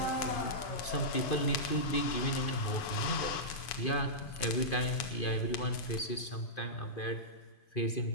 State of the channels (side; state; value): right; late; 2.5 ms